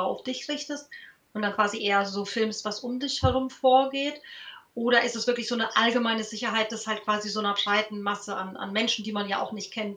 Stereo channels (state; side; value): identical; both; correlation 1.00